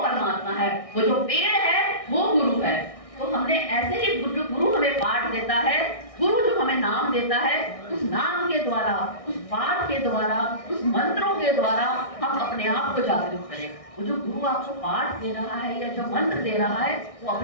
है, वो जो पेड़ है वो गुरु है। तो हमने ऐसे ही गुरु हमें पाठ देता है, गुरु जो हमें नाम देता है, उस नाम के द्वारा, उस पाठ के द्वारा, उस मंत्रों के द्वारा हम अपने आप को जागृत करें। वो जो गुरु आपको पाठ दे रहा है या जो मंत्र दे रहा है, वो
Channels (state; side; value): late; right; 1.6 ms